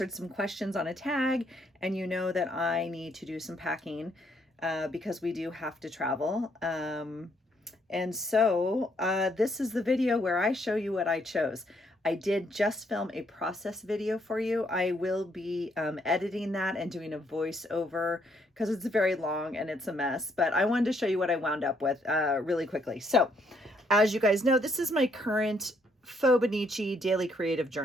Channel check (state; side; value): normal; both; correlation 0.71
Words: some questions on a tag, and you know that I need to do some packing because we do have to travel. This is the video where I show you what I chose. I did just film a process video for you. I will be editing that and doing a voiceover because it's very long and it's a mess, but I wanted to show you what I wound up with really quickly. So as you guys know, this is my current Faux daily creative